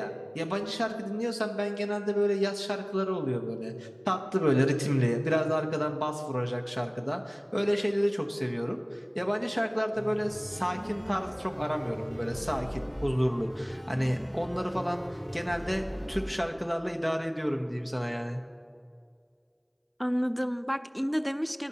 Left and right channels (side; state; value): both; identical; correlation 1.00